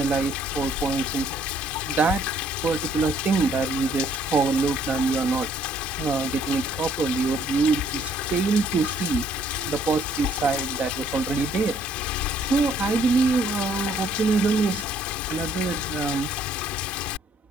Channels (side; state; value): both; normal; correlation 0.64